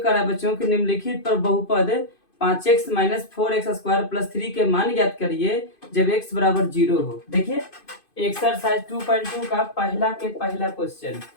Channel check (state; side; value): late; right; 2.5 ms